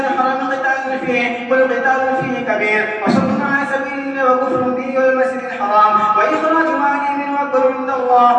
قتال فيه قل قتال فيه كبير وصد عن سبيل الله وكفر به والمسجد الحرام وإخراج مال منه أكبر عند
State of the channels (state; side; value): identical; both; correlation 1.00